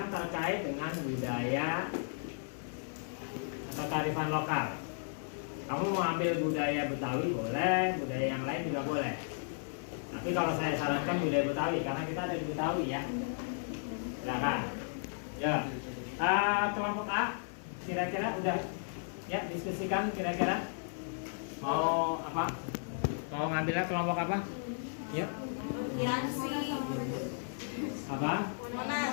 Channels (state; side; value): silent; right; 55 dB below the other